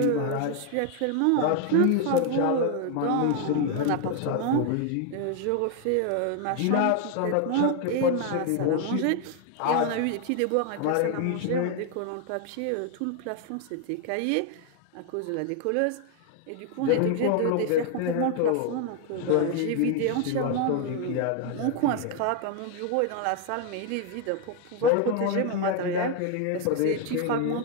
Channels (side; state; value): both; different; correlation 0.01